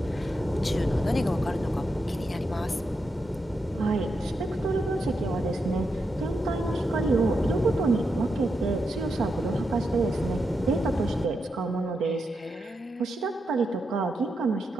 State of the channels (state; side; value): normal; both; correlation 0.85